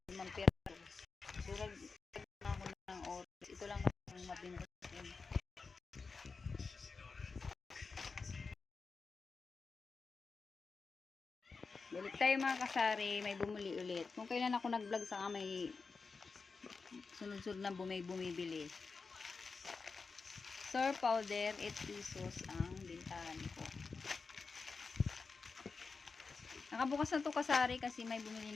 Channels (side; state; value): right; quieter; 4.6 dB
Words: Mampira. Surag na ako ng oras. Ito lang ang mabinta. Balik tayo mga kasari, may bumuli ulit. Kung kailan ako nag-vlog saka may sunod-sunod na bumibili. Sour powder, 8 pesos ang bintahan ko. Nakabukas na to kasari kasi may